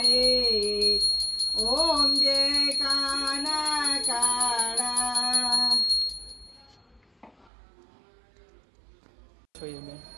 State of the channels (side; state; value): left; drops out; at 7.5 s